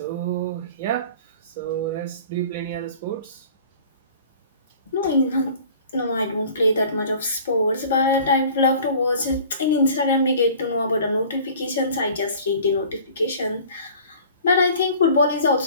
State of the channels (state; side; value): inverted; both; correlation -0.47